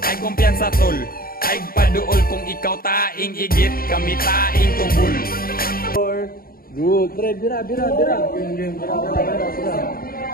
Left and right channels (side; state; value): right; late; 0.43 ms